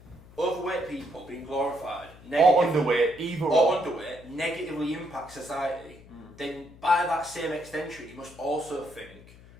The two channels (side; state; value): left; noise; hum, 21 dB below the sound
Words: overweight people being glorified or underweight, negatively impact society, then by that same extension, you must also think